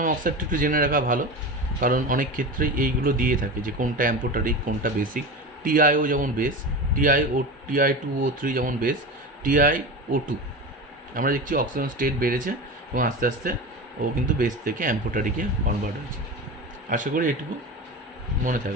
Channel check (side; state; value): both; normal; correlation 0.27